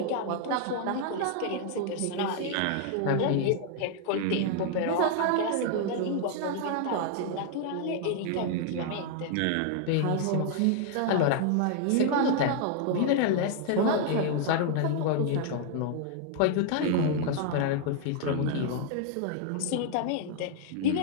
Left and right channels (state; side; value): different; both; correlation 0.00